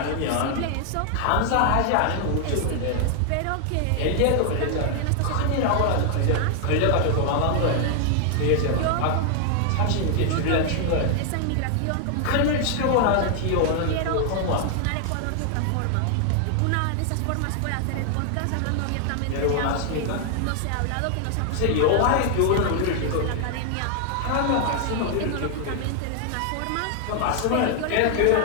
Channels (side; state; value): both; different; correlation 0.00